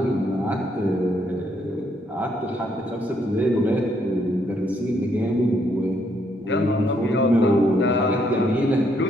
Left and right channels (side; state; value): both; normal; correlation 0.72